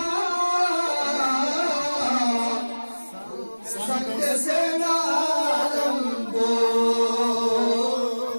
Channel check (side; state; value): both; inverted; correlation -1.00